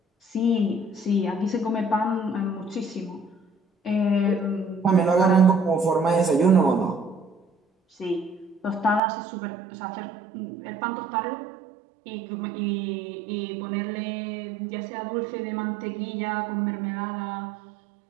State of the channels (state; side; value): drops out; left; at 9.0 s